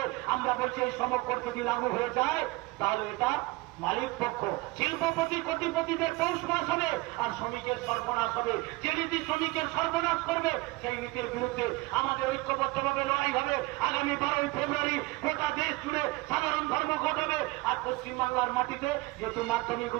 আমরা বলছি এই শ্রম কোড যদি লাগু হয়ে যায় তাহলে এটা মালিক পক্ষ শিল্পপতি কোটিপতিদের পৌষ মাস হবে আর শ্রমিকের সর্বনাশ হবে যে নীতি শ্রমিকের সর্বনাশ করবে সেই নীতির বিরুদ্ধে আমাদের ঐক্যবদ্ধভাবে লড়াই হবে আগামী 12 ফেব্রুয়ারি গোটা দেশ জুড়ে সাধারণ ধর্মঘট হবে আর পশ্চিমবাংলার মাটিতে যেহেতু মাধ্যমিক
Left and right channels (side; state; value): left; quieter; 22.4 dB